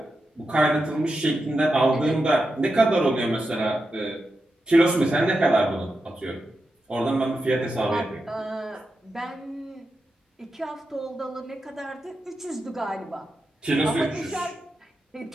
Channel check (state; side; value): normal; both; correlation 0.88